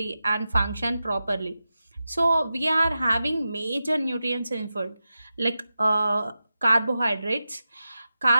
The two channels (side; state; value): both; inverted; correlation -0.92